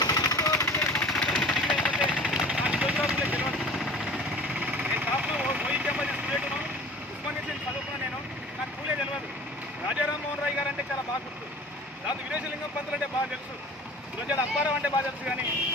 నేను టాప్లో వైద్యం స్టూడెంట్ను ఉస్మానియా చదువుకున్నా. నాకు పూలే తెలియదు. రాజారామ్మోహన్ రాయ్ గారు అంటే చాలా బాగా గుర్తు, దాంతో వీరేశలింగం పంతులు అంటే బాగా తెలుసు, గురజాడ అప్పారావు అంటే బాగా తెలుసు, కానీ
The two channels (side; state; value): both; normal; correlation 0.43